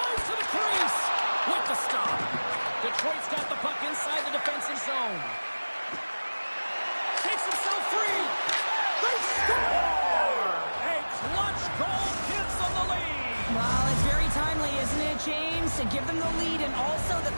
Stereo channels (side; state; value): both; inverted; correlation -1.00